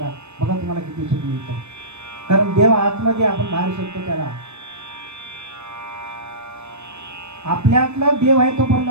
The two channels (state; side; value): late; left; 0.81 ms